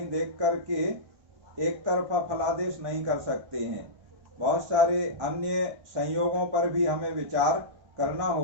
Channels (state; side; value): late; left; 1.5 ms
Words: देख करके एक तरफा फलादेश नहीं कर सकते हैं। बहुत सारे अन्य संयोगों पर भी हमें विचार करना